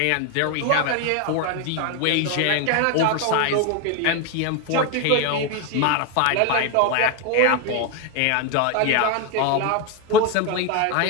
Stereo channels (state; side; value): different; both; correlation 0.01